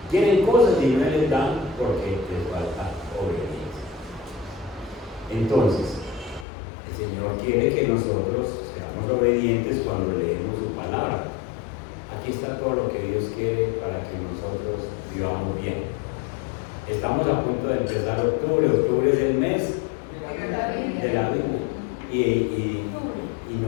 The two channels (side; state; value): right; drops out; at 6.5 s